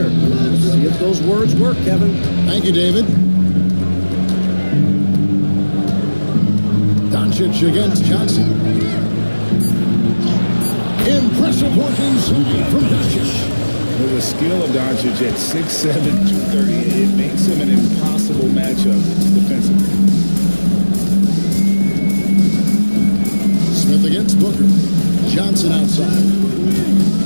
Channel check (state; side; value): inverted; both; correlation -1.00